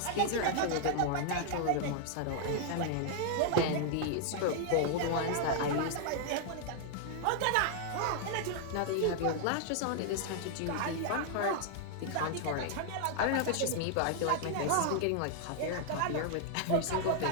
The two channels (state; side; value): different; both; correlation 0.00